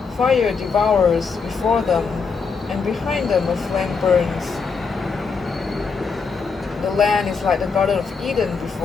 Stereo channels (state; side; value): quieter; right; 5.1 dB